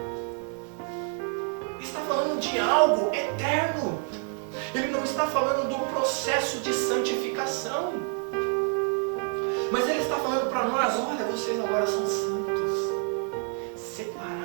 Está falando de algo eterno. Ele não está falando do processo de santificação. Mas Ele está falando para nós, olha, vocês agora são santos,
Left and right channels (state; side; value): quieter; left; 35.6 dB